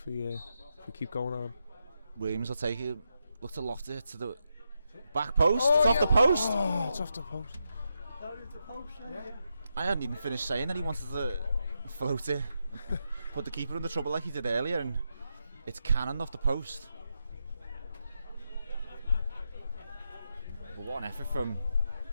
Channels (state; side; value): inverted; both; correlation -0.85